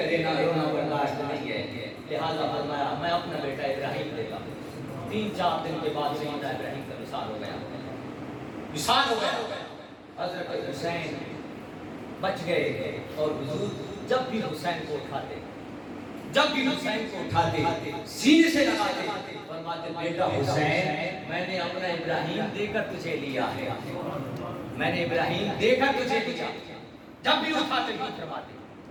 رونا برداشت نہیں ہے، لہذا فرمایا میں اپنا بیٹا ابراہیم دیتا ہوں۔ 3-4 دن کے بعد سیدنا ابراہیم کا وصال ہو گیا۔ حضرت حسین بچ گئے، اور حضور جب بھی حسین کو اٹھاتے سینے سے لگاتے فرماتے بیٹا حسین میں نے اپنا ابراہیم دے کر تجھے لیا ہے، جب بھی اٹھاتے ہی فرماتے۔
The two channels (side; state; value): both; identical; correlation 1.00